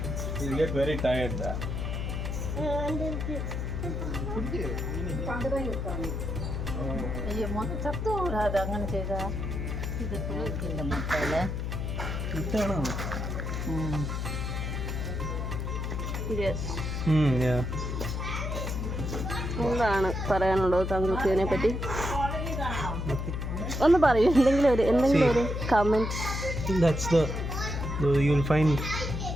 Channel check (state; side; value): noise; left; hum, 3 dB below the sound